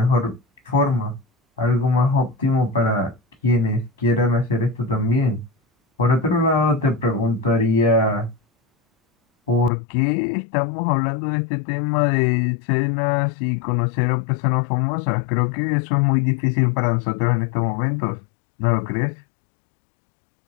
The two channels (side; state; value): right; drops out; at 9.7 s